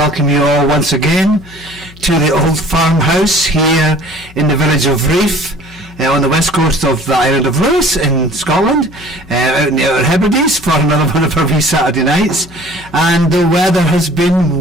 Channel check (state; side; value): noise; left; hum, 22 dB below the sound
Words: you all once again to the old farmhouse here in the village of Riof, on the west coast of the island of Lewis in Scotland, out in the Outer Hebrides for another one of our wee Saturday nights. And the weather has